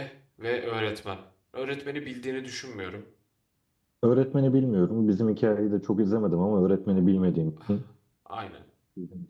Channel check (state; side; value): identical; both; correlation 1.00